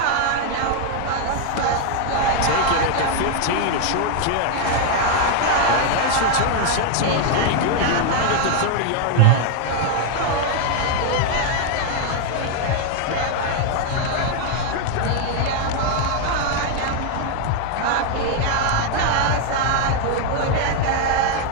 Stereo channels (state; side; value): different; both; correlation 0.00